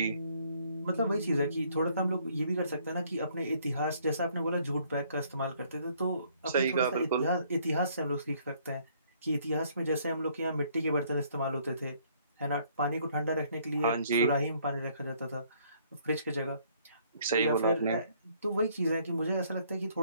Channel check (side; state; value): both; inverted; correlation -0.64